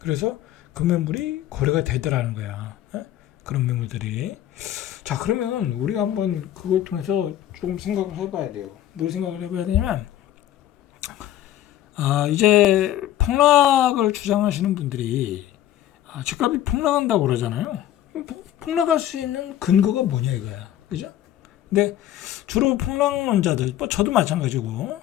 금매물이 거래가 되더라는 거야. 그런 매물들이. 자, 그러면 우리가 한번 그걸 통해서 조금 생각을 해봐야 돼요. 뭘 생각을 해봐야 되냐면, 이제 폭락을 주장하시는 분들이 집값이 폭락한다고 그러잖아요. 폭락할 수 있는 근거가 뭐냐 이거야. 그죠? 근데 주로 폭락론자들, 뭐 저도 마찬가지고,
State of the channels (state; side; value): quieter; right; 12.4 dB